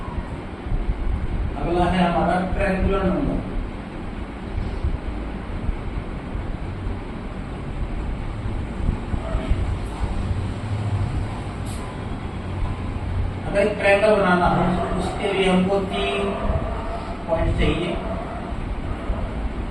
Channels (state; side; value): identical; both; correlation 1.00